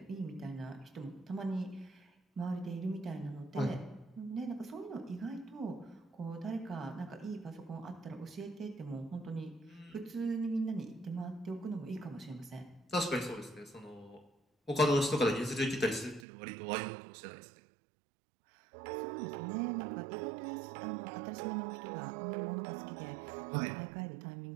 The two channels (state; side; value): drops out; left; at 16.2 s